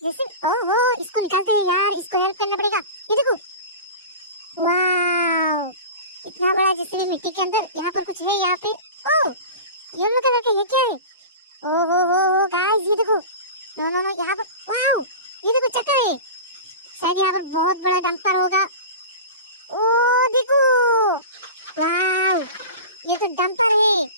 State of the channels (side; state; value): both; inverted; correlation -0.32